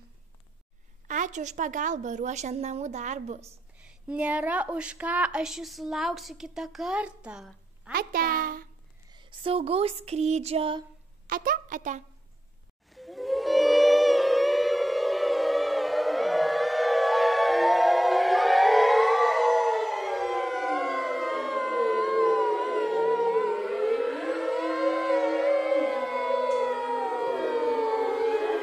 Ačiū už pagalbą ruošiant namų darbus. Nėra už ką, aš jūsų lauksiu kitą kartą. Ate. Saugaus skrydžio. Ate.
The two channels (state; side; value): normal; both; correlation 0.90